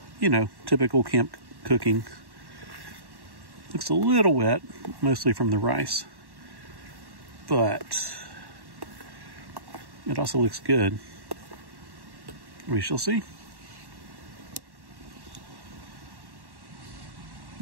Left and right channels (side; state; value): left; late; 1.1 ms